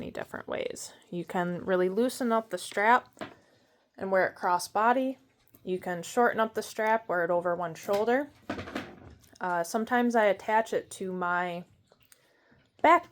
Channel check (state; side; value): identical; both; correlation 1.00